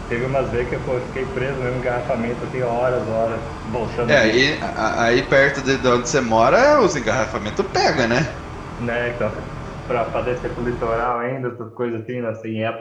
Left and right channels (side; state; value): both; identical; correlation 1.00